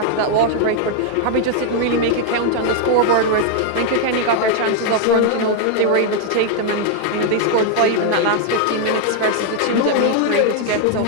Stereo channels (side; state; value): both; different; correlation 0.00